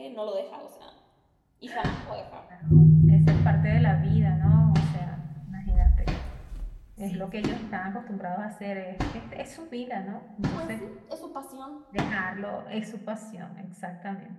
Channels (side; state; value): both; identical; correlation 1.00